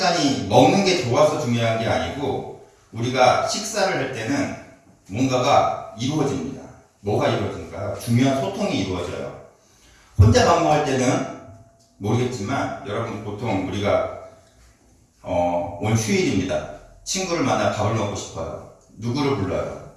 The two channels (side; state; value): both; identical; correlation 1.00